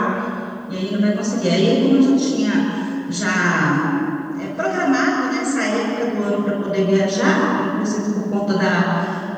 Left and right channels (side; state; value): both; identical; correlation 1.00